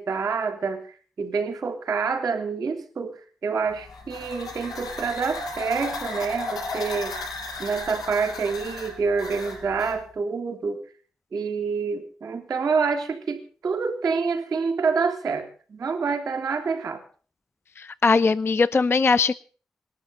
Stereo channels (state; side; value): normal; both; correlation 0.72